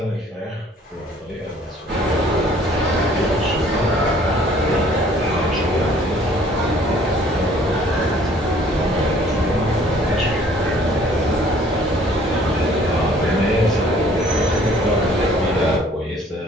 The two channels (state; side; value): normal; both; correlation 0.57